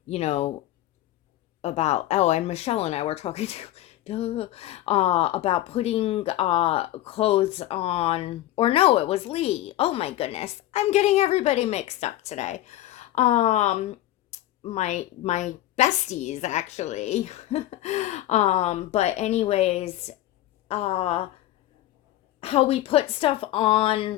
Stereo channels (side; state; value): right; quieter; 14.6 dB